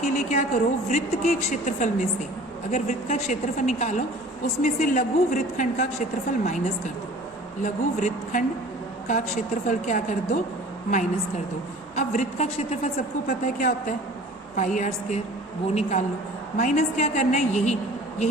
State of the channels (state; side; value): noise; left; hum, 29 dB below the sound